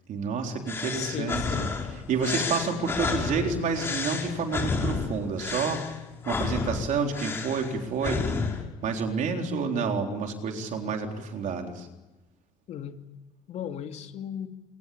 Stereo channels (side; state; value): both; normal; correlation 0.41